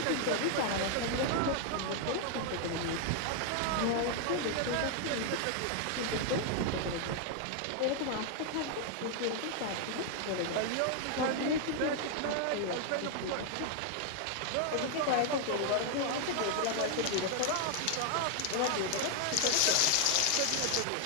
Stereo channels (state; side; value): different; both; correlation 0.00